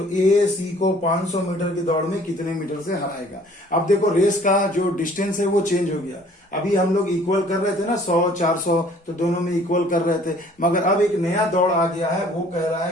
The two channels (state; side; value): normal; both; correlation 0.55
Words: ए सी को 500 मीटर की दौड़ में कितने मीटर से हराएगा। अब देखो रेस का जो डिस्टेंस है वो चेंज हो गया। अभी हम लोग इक्वल कर रहे थे ना, 100 400, तो दोनों में इक्वल कर रहे थे, मगर अब एक नया दौड़ आ गया है। वो कह रहा है